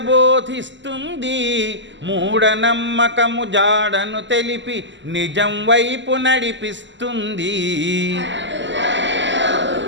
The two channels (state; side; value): late; left; 0.54 ms